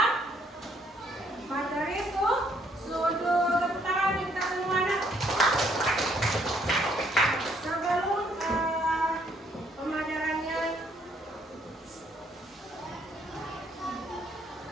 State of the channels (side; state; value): both; normal; correlation 0.67